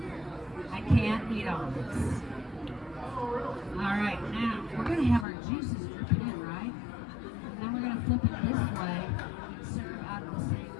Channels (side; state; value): right; drops out; at 5.2 s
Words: I can't eat all this. All right, now we're gonna have our juices dripping in, right? And then we're gonna flip it this way and serve out of the same